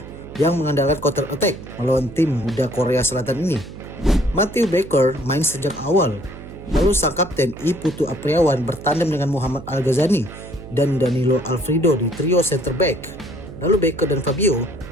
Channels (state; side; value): noise; right; hum, 14 dB below the sound